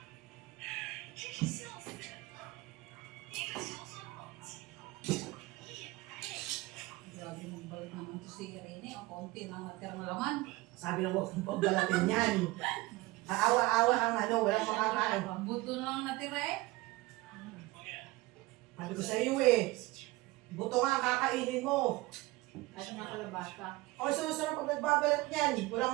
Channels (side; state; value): left; quieter; 20.6 dB